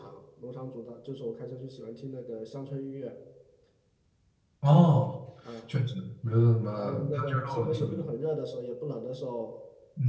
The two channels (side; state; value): both; identical; correlation 1.00